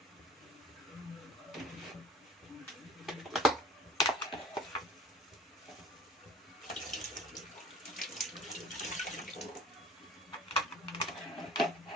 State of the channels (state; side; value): normal; both; correlation 0.45